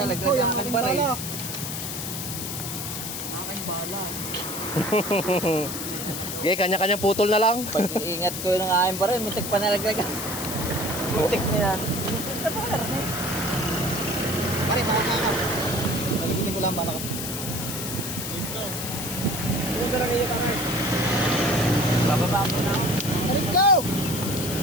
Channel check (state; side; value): noise; left; hiss, 5 dB below the sound